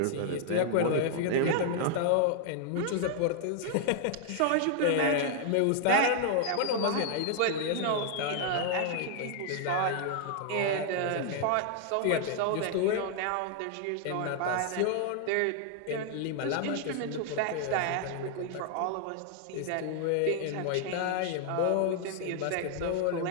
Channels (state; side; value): different; both; correlation -0.01